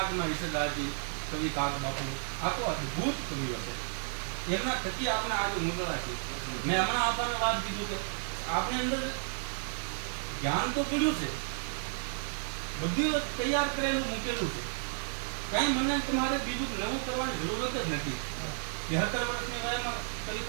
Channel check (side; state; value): left; silent; 56 dB below the other